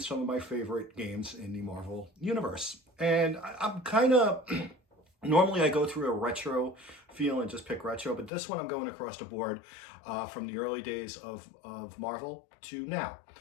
of my favorite games in the Marvel Universe. And I'm kind of normally I go through a retro feel and just pick retro, but this one I'm going across the board from the early days of Marvel to now.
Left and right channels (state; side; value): drops out; right; at 8.3 s